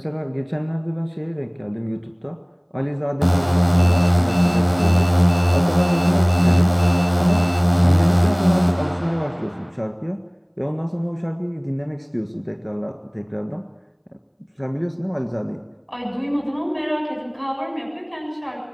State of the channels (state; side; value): identical; both; correlation 1.00